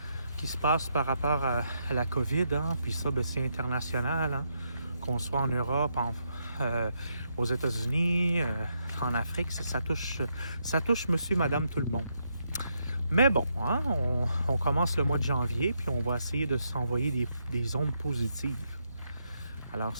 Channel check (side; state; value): both; inverted; correlation -0.79